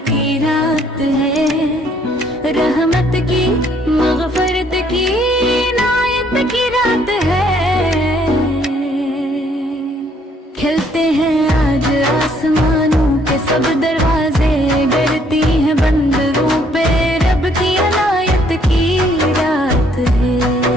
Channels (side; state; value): both; normal; correlation 0.65